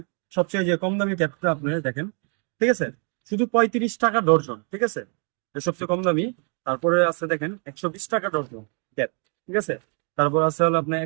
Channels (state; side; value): quieter; left; 39.5 dB